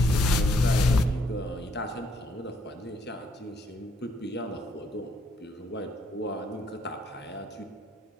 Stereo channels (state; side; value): normal; both; correlation 0.70